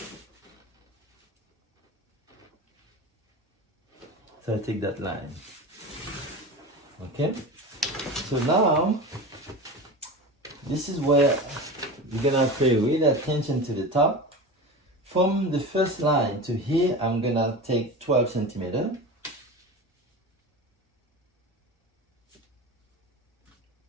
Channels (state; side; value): normal; both; correlation 0.29